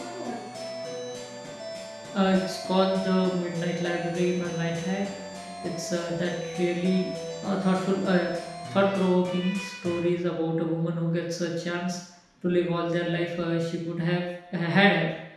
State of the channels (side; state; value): both; identical; correlation 1.00